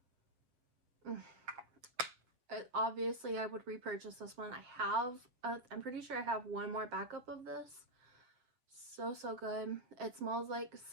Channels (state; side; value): late; left; 7.9 ms